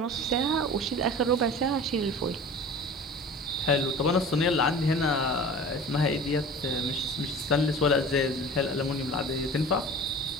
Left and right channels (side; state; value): both; normal; correlation 0.39